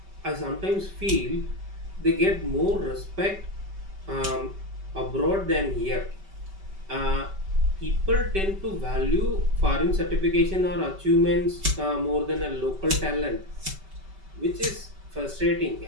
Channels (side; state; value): left; late; 5.2 ms